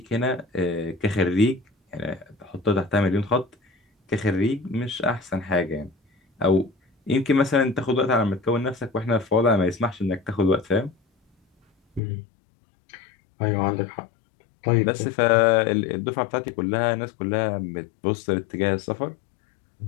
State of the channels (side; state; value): right; drops out; at 12.0 s